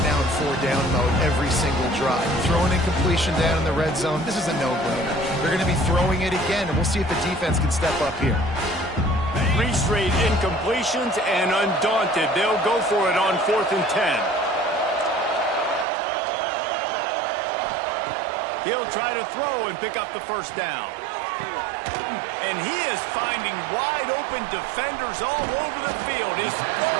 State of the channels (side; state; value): left; drops out; at 15.9 s